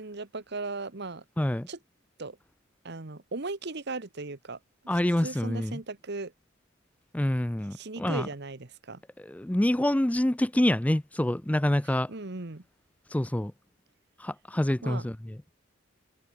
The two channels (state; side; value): normal; both; correlation 0.87